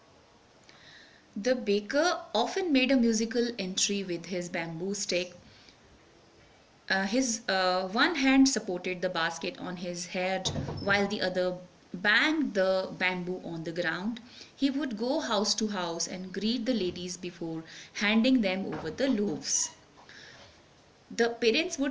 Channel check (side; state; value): both; identical; correlation 1.00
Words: The baker often made a musical entry with his bamboo stick. His one hand supported the basket on his head while the other banged the bamboo on the ground. He would go house to house and greet the ladies before handing them over the loaves. The parents